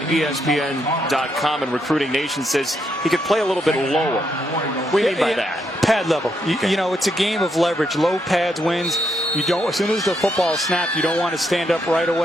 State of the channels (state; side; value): normal; both; correlation 0.78